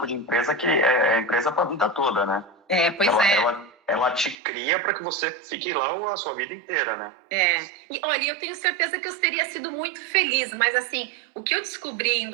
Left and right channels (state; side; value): drops out; left; at 4.4 s